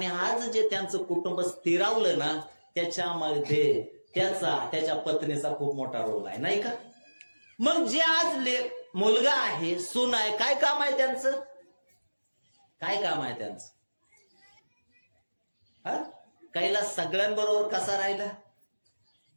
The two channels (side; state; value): both; inverted; correlation -1.00